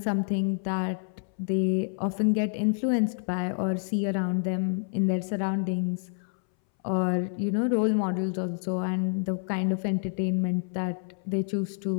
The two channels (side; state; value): right; silent; 59 dB below the other